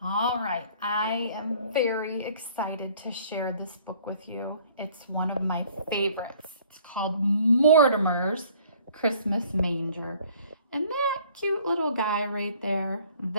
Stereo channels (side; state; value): both; inverted; correlation -0.56